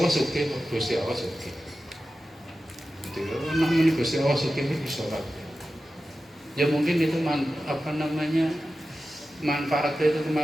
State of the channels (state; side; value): normal; both; correlation 0.93